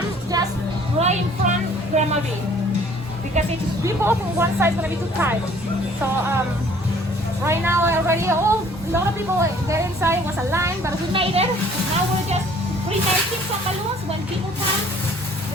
just right in front of Grandma B, because if we both on one side, it's gonna be too tight. So right now already, a lot of people there inside. Was a line, but we made it. Now we're just pre-making some balloons. When people come,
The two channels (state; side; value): normal; both; correlation 0.55